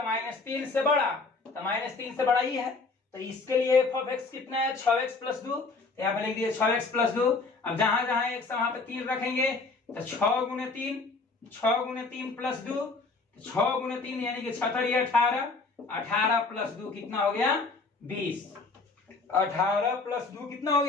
-3 से बड़ा, तो -3 से बड़ा ही है, तो इसके लिए f ऑफ x कितना है? 6x + 2, तो यहाँ पे लिख दिए 6x + 2। अब जहां जहां x वहां पे 3 रखेंगे, तो 6 गुने 3 + 2, 6 गुने 3 यानी कि 6 × 18, 18 + 2 कितना हो गया? 20, 18 + 2 कितना हो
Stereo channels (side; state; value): right; quieter; 3.9 dB